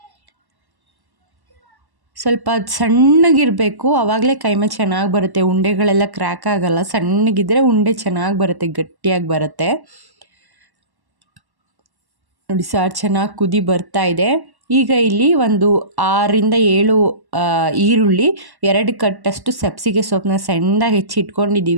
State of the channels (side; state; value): left; late; 1.1 ms